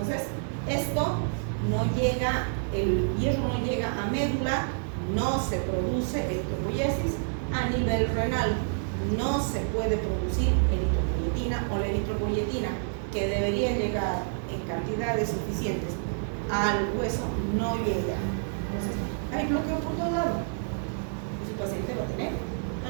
esto no llega, el hierro no llega a médula, no se produce eritropoiesis. A nivel renal no se puede producir eritropoyetina o la eritropoyetina que debería llegar en cantidades suficientes al hueso no llega. Entonces, hay bloqueo por todo lado. Y su paciente va a tener anemia.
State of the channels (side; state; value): left; silent; digital silence